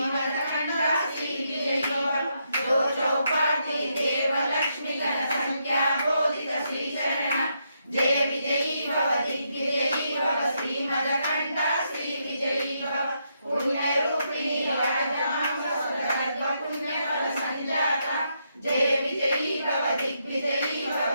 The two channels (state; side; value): inverted; both; correlation -0.79